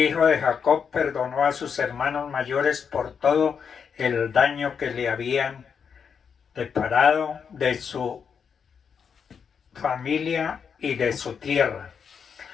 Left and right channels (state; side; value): quieter; right; 6.7 dB